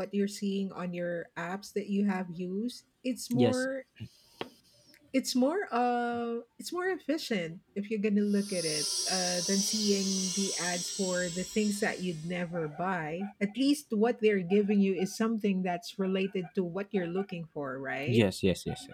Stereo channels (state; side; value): identical; both; correlation 1.00